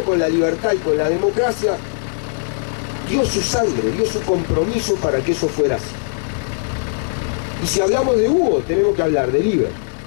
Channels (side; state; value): right; silent; 66 dB below the other